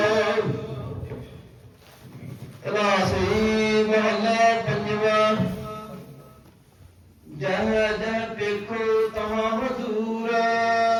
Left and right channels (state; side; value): identical; both; correlation 1.00